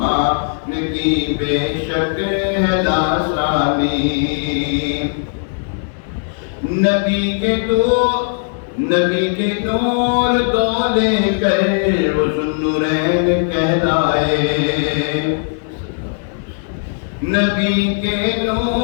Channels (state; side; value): silent; right; 68 dB below the other